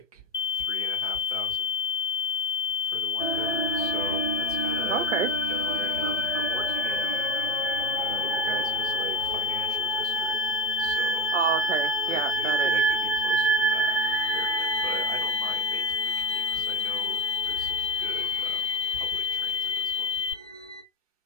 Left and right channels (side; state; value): both; normal; correlation 0.13